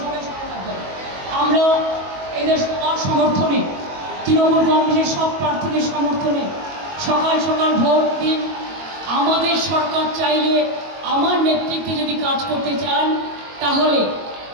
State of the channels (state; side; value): late; left; 22 ms